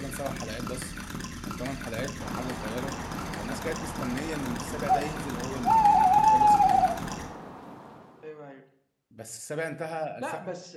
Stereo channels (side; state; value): both; identical; correlation 1.00